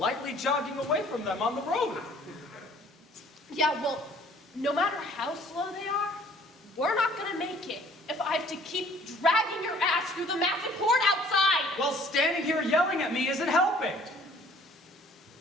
jogging away from them on the road. Yeah, well, no matter how slow they are, we're not gonna make it if I have to keep dragging your ass through the massive horde outside. Well, standing here yelling at me isn't helping.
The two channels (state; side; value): normal; both; correlation 0.55